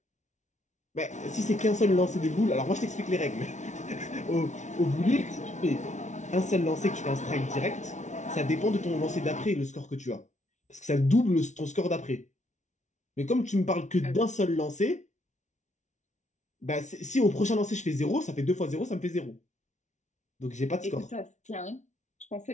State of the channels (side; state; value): right; late; 0.35 ms